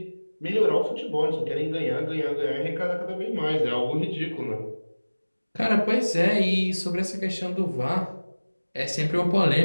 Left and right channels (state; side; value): inverted; both; correlation -1.00